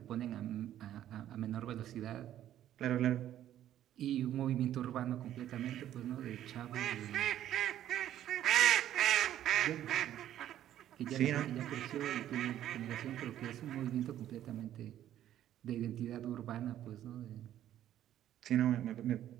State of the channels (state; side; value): quieter; left; 11.8 dB